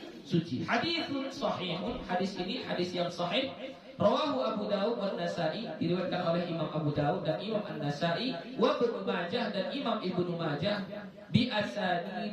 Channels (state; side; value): identical; both; correlation 1.00